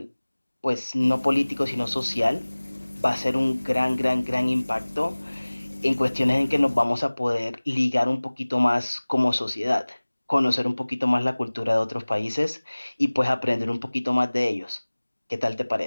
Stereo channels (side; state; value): both; inverted; correlation -1.00